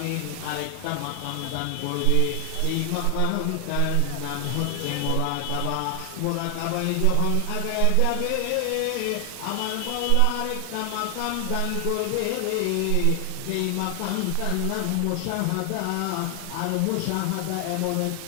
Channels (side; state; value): both; different; correlation 0.00